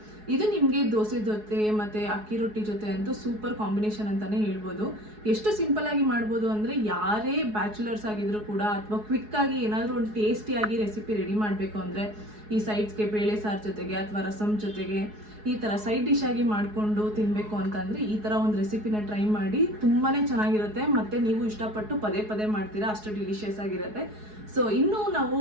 ಇದು ನಿಮಗೆ ದೋಸೆ ಜೊತೆ ಮತ್ತು ಅಕ್ಕಿ ರೊಟ್ಟಿ ಜೊತೆ ಅಂತೂ ಸೂಪರ್ ಕಾಂಬಿನೇಷನ್ ಅಂತಲೇ ಹೇಳ್ಬೋದು. ಎಷ್ಟು ಸಿಂಪಲ್ಲಾಗಿ ಮಾಡ್ಬೋದು ಅಂದರೆ ಯಾರೇ ಬ್ಯಾಚುಲರ್ಸ್ ಆಗಿದ್ರು ಕೂಡ ಅಥವಾ ಕ್ವಿಕ್ಕಾಗಿ ಏನಾದರೂ ಒಂದು ಟೇಸ್ಟಿಯಾಗಿ ರೆಸಿಪಿ ರೆಡಿ ಮಾಡಬೇಕು ಅಂದರೆ ಈ ಸೈಡ್ಸ್ಗೆ ಬೇಳೆ ಸಾರು ಜೊತೆಗೆ ಅಥವಾ ರಸಮ್ ಜೊತೆಗೆ ಈ ಥರ ಸೈಡ್ ಡಿಶ್ ಆಗಿ ಮಾಡಿಕೊಂಡು ತಿನ್ನಬೇಕು ಅಂತಂದರೆ ಈ ಥರ ಒಂದು ರೆಸಿಪಿನ ಟ್ರೈ ಮಾಡಿ. ತುಂಬಾ ಚೆನ್ನಾಗಿರುತ್ತೆ ಮತ್ತು ನೀವು ಇಷ್ಟಪಟ್ಟು ಪದೇ ಪದೇ ಮಾಡ್ತೀರಾ, ಅಷ್ಟು ಡಿಲಿಷಿಯಸ್ ಆಗಿರುತ್ತೆ. ಸೊ ಇನ್ನೂ ನಾವು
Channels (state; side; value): late; left; 4.7 ms